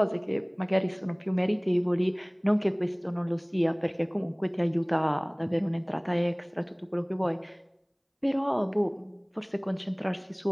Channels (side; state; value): both; identical; correlation 1.00